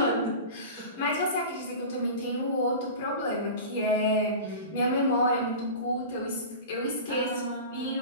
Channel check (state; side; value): inverted; both; correlation -0.32